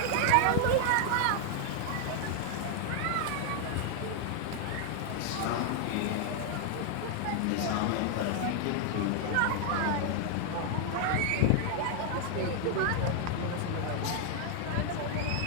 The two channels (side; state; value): both; different; correlation 0.00